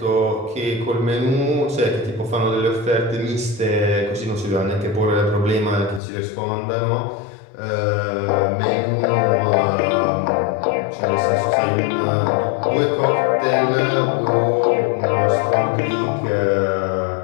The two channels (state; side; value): drops out; right; at 6.0 s